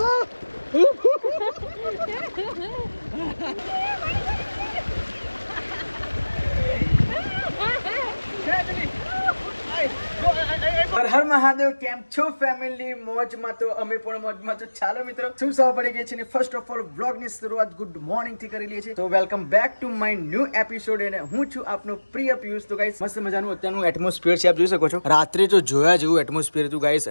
હર મહાદેવ કેમ છો ફેમિલી મોજમાં તો અમે પણ મોજમાં તો ચાલો મિત્રો શું સૌ પડી ગઈ છે ને ફર્સ્ટ ઓફ ઓલ વ્લોગ ની શરૂઆત ગુડ મોર્નિંગ થી કરી લઈએ છીએ તો welcome back to my new episode અને હું છું આપનો પ્રિય પિયુષ તો ગાઈસ મસ્ત મજાનું અત્યારનું એટમોસ્ફિયર છે આપ જોઈ શકો છો રાત્રે તો જોયા જેવું એટમોસ્ફિયર હતું ગાઈસ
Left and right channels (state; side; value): inverted; both; correlation -1.00